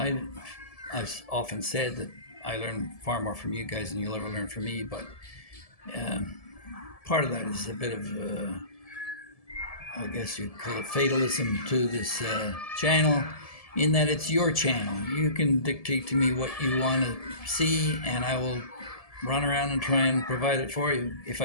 I've often said that I learn far more from you guys than you'll ever learn from me, but part of that is a bit of, I guess you'd call it fatalism to this channel, in that it's your channel. You can dictate to me what you want to see, and I will run around and try and provide it for you if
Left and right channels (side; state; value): right; late; 1.7 ms